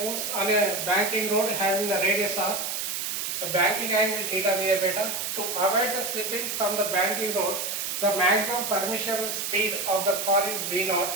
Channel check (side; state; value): right; noise; hiss, 3 dB below the sound